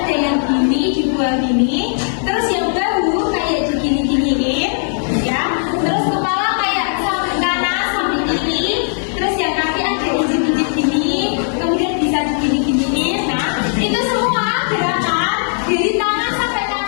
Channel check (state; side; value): silent; right; 68 dB below the other